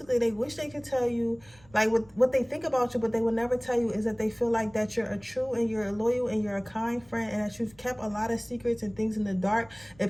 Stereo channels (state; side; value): noise; right; rumble, 27 dB below the sound